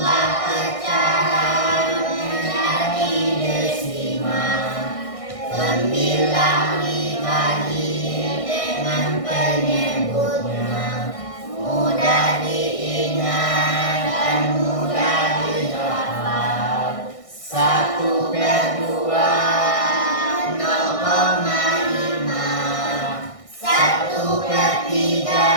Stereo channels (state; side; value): late; right; 1.6 ms